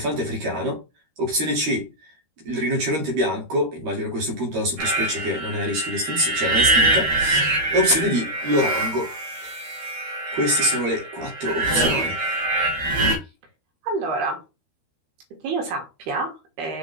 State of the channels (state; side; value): late; left; 13 ms